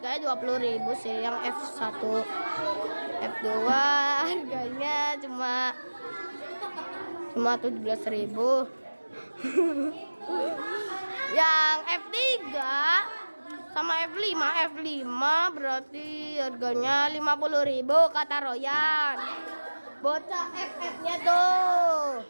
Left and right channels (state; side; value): inverted; both; correlation -1.00